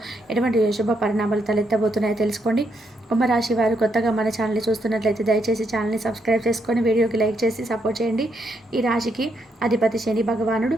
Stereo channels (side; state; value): both; normal; correlation 0.77